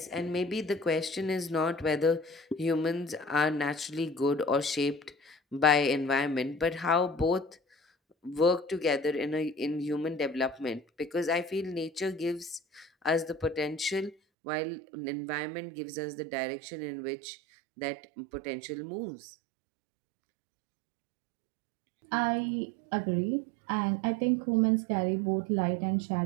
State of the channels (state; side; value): drops out; left; at 14.2 s